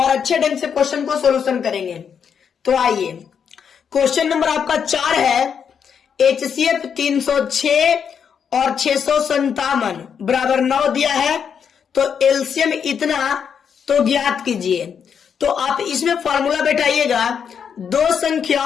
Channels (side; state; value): right; quieter; 7.3 dB